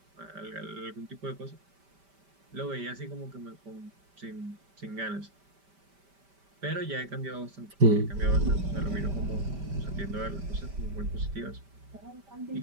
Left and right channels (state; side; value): late; left; 5.1 ms